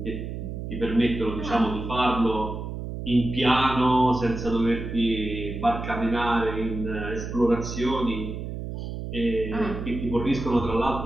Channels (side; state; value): right; noise; hum, 6 dB below the sound